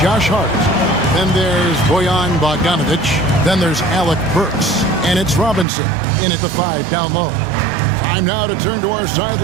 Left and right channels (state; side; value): drops out; left; at 5.7 s